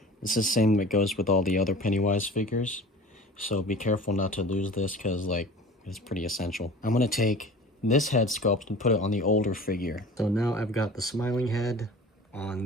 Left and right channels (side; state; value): both; normal; correlation 0.40